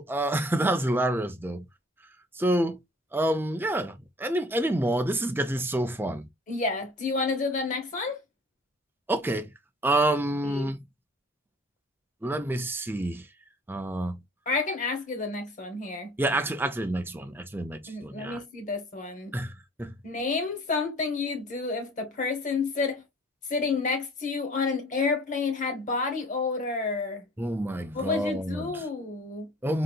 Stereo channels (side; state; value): both; normal; correlation 0.51